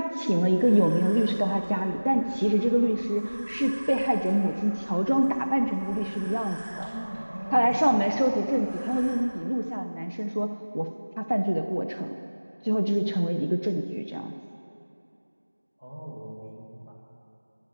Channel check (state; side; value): inverted; both; correlation -1.00